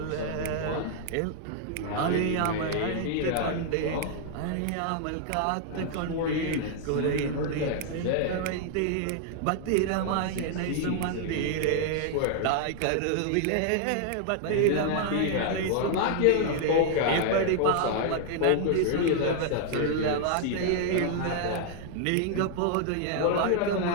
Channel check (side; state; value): both; different; correlation 0.00